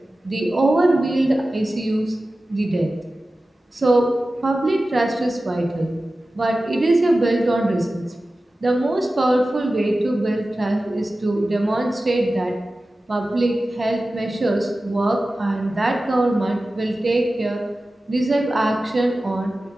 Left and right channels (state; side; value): normal; both; correlation 0.95